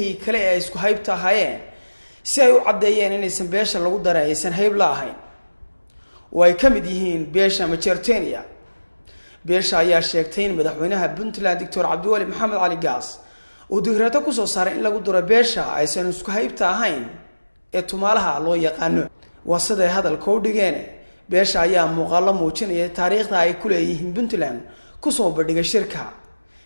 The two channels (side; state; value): both; inverted; correlation -1.00